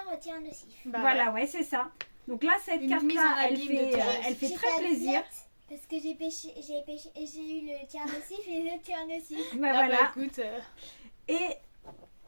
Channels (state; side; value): inverted; both; correlation -1.00